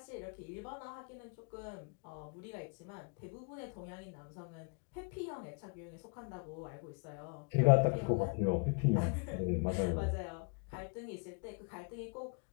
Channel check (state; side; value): quieter; right; 34.6 dB